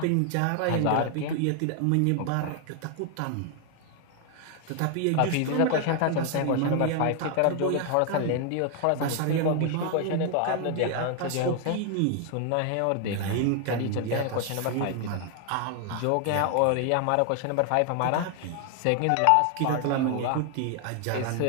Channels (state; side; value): different; both; correlation 0.00